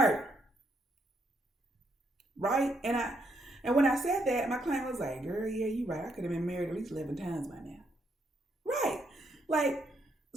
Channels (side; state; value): both; normal; correlation 0.75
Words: Right? And when I said that, my client was like, girl, yeah, you're right. I could have been married at least 11 times by now. Right. Like,